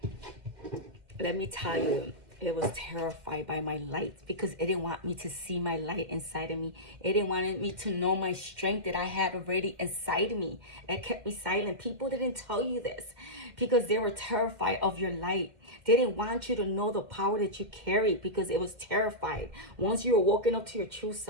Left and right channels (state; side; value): late; left; 2.1 ms